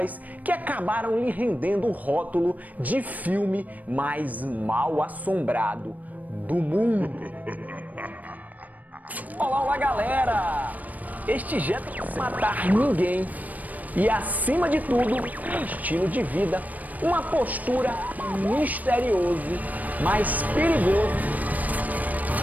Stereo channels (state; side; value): late; left; 0.077 ms